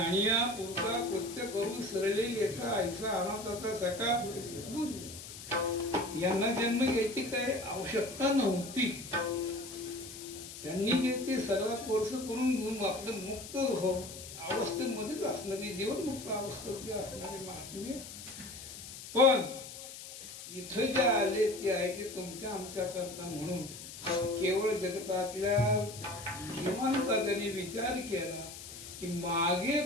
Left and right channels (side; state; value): left; noise; hiss, 12 dB below the sound